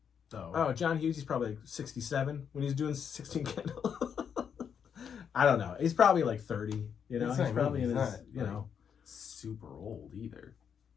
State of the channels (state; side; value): quieter; right; 7.5 dB